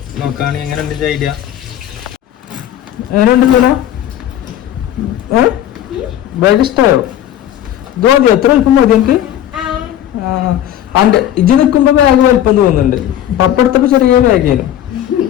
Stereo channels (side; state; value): right; quieter; 11.5 dB